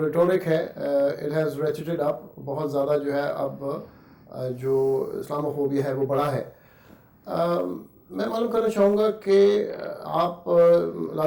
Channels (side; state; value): both; identical; correlation 1.00